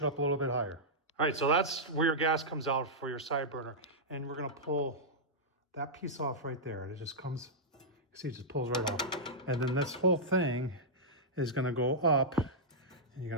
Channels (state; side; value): normal; both; correlation -0.10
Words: up a little bit higher. All right, so that's where your gas comes out for your side burner, and we're gonna pull that piece off right there. It just comes, see, it just pulls right off. And then this whole thing is gonna go up, and you're